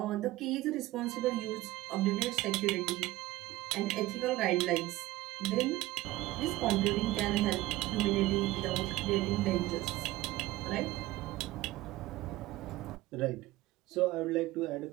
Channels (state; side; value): quieter; left; 17.4 dB